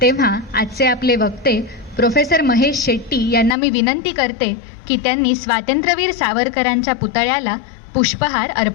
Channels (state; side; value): drops out; right; at 3.6 s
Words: तेव्हा आजचे आपले वक्ते प्रोफेसर महेश शेट्टी यांना मी विनंती करते की त्यांनी स्वातंत्र्यवीर सावरकरांच्या पुतळ्याला पुष्पहार